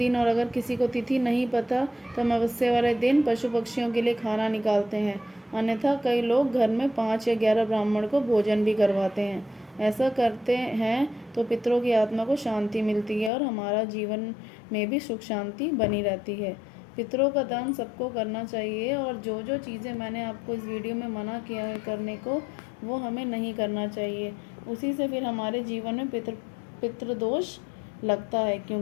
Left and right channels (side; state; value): right; drops out; at 13.3 s